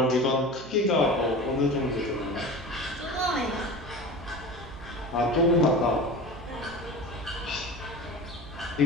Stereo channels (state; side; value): noise; right; hum, 17 dB below the sound